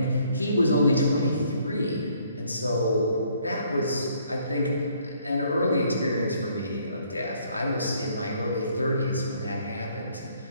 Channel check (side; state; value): both; inverted; correlation -0.64